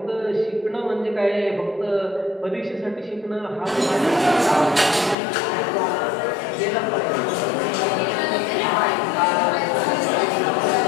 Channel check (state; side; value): drops out; right; at 5.2 s